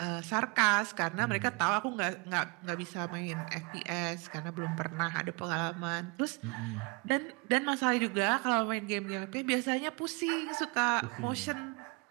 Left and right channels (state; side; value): quieter; left; 29.0 dB